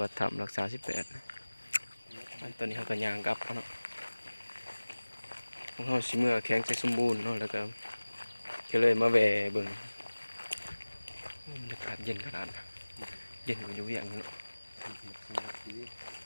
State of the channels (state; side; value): inverted; both; correlation -1.00